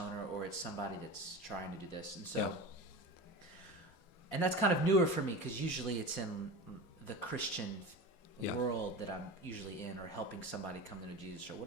or it's somebody that's trying to do this. And so, and that's kind of newer for me because usually it's in the Christian world that I'm usually in or helping somebody come to know Jesus or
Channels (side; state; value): right; late; 5.6 ms